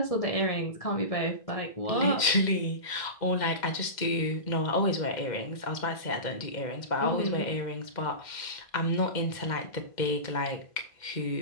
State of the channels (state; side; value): late; right; 2.1 ms